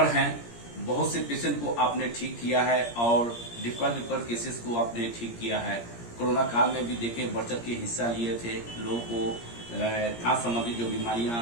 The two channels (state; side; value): late; right; 17 ms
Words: हैं। बहुत से पेशेंट को आपने ठीक किया है और डिफिकल्ट केसेस को आपने ठीक किया है। कोरोना काल में भी देखे बढ़ चढ़ के हिस्सा लिए थे। लोगों को सांस संबंधी जो बीमारियां